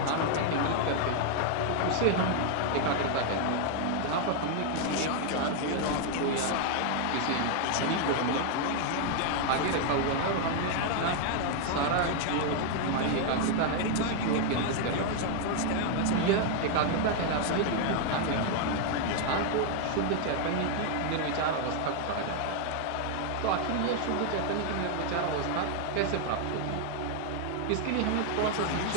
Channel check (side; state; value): both; different; correlation 0.00